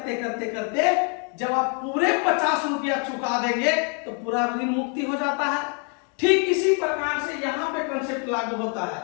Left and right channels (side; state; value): right; quieter; 39.4 dB